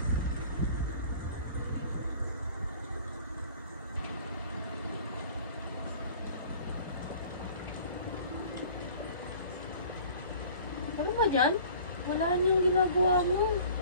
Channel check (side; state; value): both; inverted; correlation -0.48